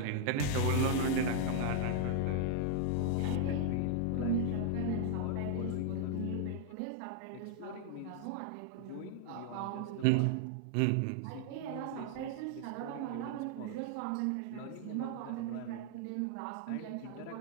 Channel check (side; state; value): both; different; correlation 0.00